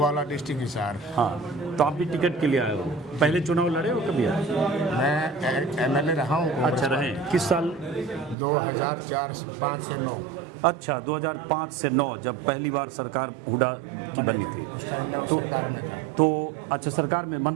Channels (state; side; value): drops out; left; at 8.3 s